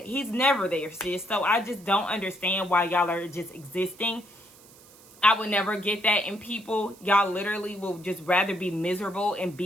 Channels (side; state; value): right; noise; hiss, 24 dB below the sound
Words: He's never there, sis. So I just don't understand why y'all are just existing. I would never get that in people. Y'all literally will just rather be miserable and